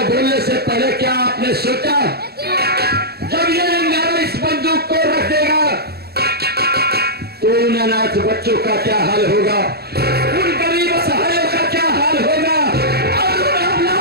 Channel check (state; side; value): late; left; 0.46 ms